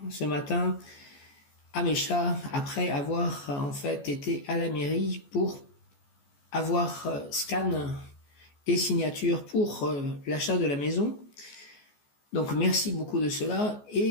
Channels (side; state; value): right; late; 14 ms